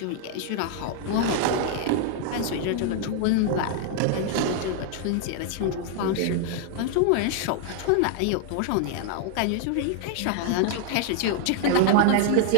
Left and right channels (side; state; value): both; different; correlation -0.01